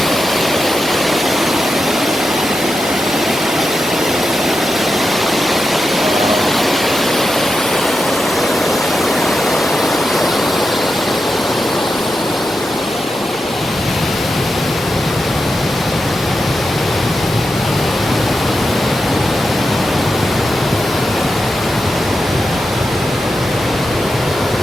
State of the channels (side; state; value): both; normal; correlation 0.89